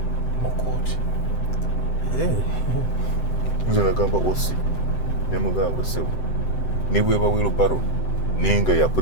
mu kooti. Nze nagamba osi ne mugamba sebu ne bweba wheelbarrow nenga ya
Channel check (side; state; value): right; late; 7.8 ms